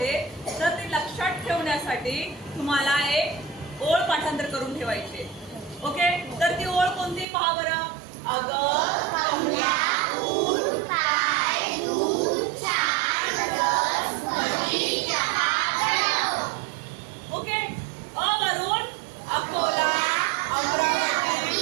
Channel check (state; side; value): drops out; left; at 7.2 s